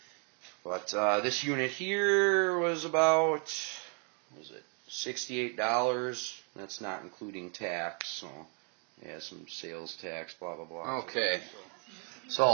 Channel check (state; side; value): quieter; left; 39.2 dB